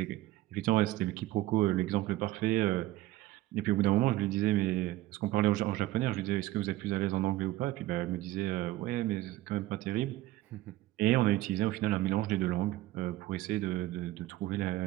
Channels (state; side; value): quieter; left; 16.4 dB